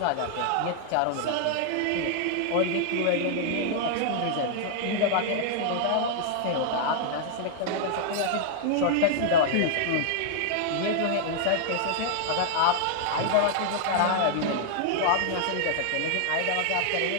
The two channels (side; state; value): both; different; correlation -0.01